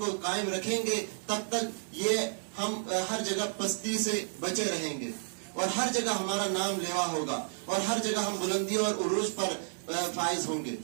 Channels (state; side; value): silent; left; digital silence